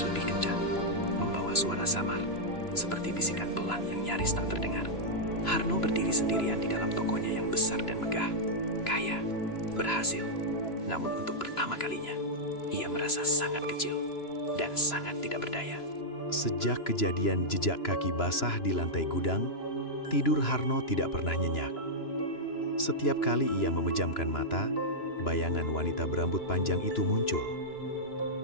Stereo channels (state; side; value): late; right; 2.9 ms